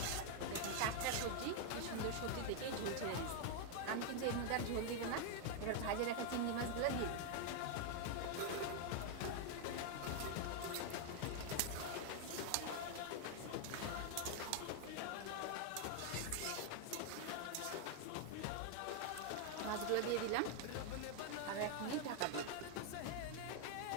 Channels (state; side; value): different; both; correlation 0.00